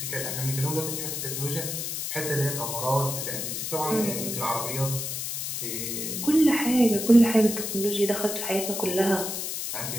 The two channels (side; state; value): left; noise; hiss, 4 dB below the sound